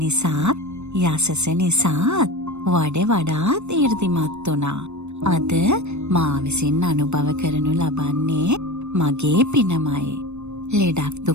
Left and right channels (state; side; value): late; left; 0.82 ms